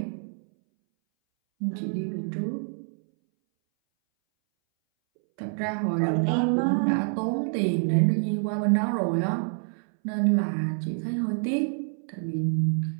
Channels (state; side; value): silent; left; 60 dB below the other